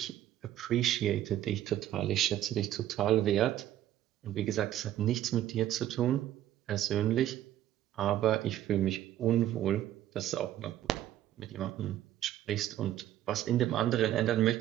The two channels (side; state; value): left; quieter; 12.5 dB